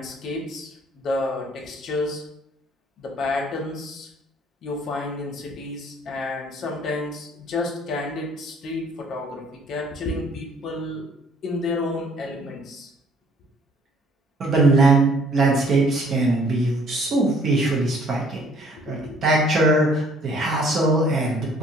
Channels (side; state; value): both; normal; correlation 0.59